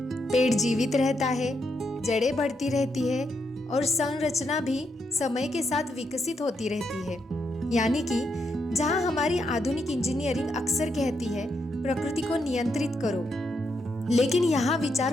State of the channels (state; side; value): normal; both; correlation 0.80